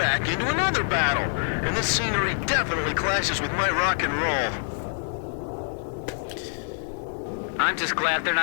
into another battle. And this scenery definitely clashes with my rock and roll. I'm just glad they're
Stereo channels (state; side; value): silent; right; 61 dB below the other